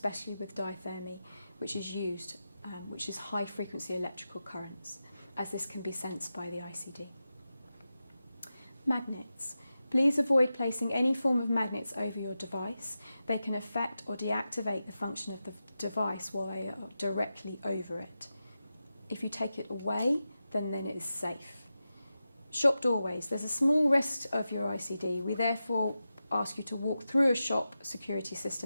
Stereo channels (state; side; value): inverted; both; correlation -0.92